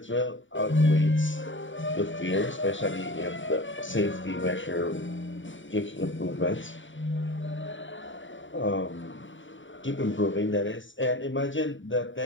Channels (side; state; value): right; late; 0.56 ms